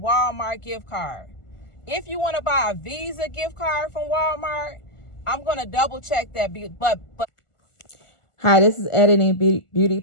gift card. If you want to buy a Visa gift card from Walmart, I'm going to double check that. But Hi, this is Editing Beauty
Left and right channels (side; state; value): right; late; 1.4 ms